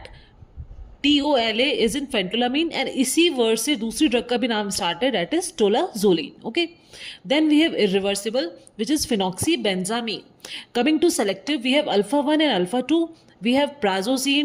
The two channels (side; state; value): both; identical; correlation 1.00